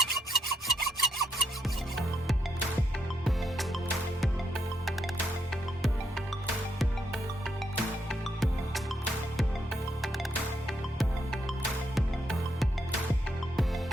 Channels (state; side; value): normal; both; correlation 0.77